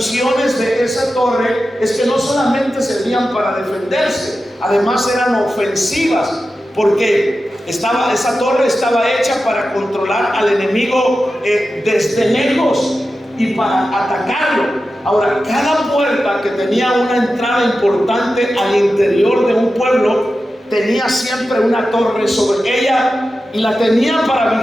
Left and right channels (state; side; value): normal; both; correlation 0.92